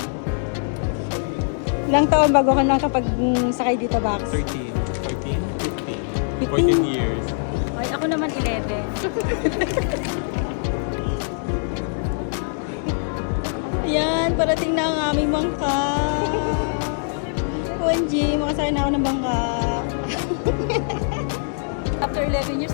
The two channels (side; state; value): right; silent; digital silence